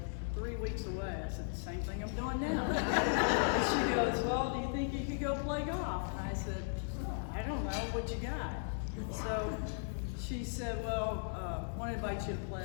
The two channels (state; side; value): silent; right; 53 dB below the other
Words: 3 weeks away?" I said, "The same thing I'm doing now." And she goes, "Well, do you think you could go play golf?" And I said, "I don't know, what you got?" So she said, "Well, I want to invite you to